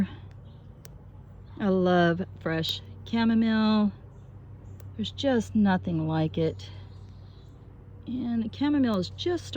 I love fresh chamomile. There's just nothing like it. And the chamomile is just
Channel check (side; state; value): both; identical; correlation 1.00